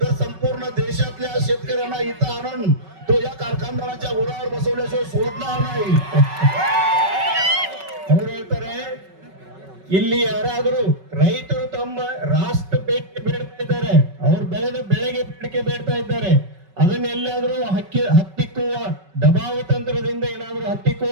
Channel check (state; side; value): late; left; 5.3 ms